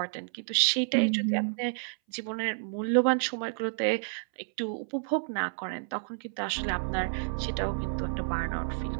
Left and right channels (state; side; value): silent; left; 58 dB below the other